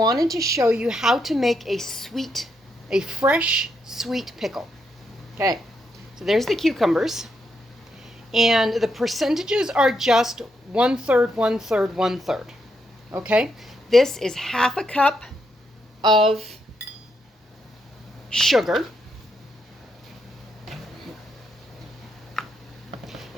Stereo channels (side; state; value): both; normal; correlation 0.80